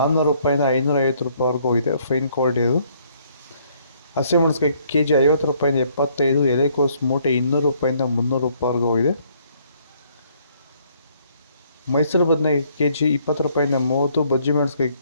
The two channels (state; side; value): inverted; both; correlation -0.66